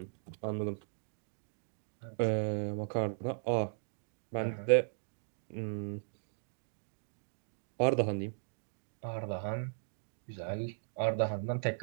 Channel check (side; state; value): left; silent; digital silence